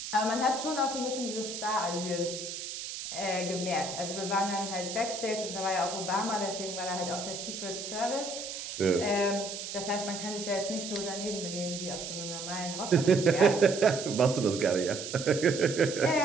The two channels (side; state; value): right; noise; hiss, 7 dB below the sound